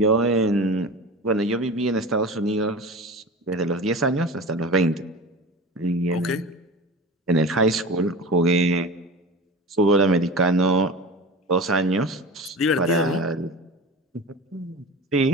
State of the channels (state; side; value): normal; both; correlation 0.32